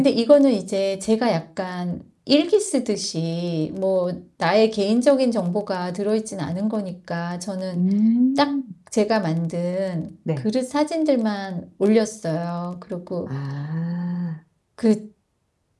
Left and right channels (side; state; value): both; identical; correlation 1.00